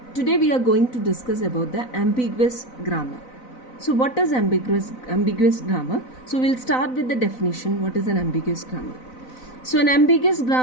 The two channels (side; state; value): right; late; 4.0 ms